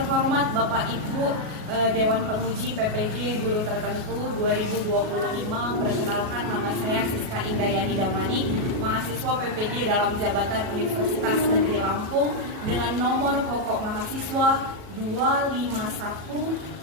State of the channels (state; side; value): late; left; 37 ms